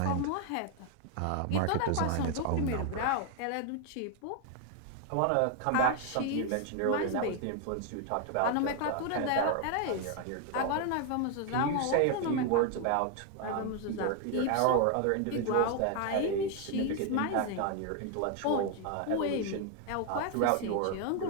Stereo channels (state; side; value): different; both; correlation 0.00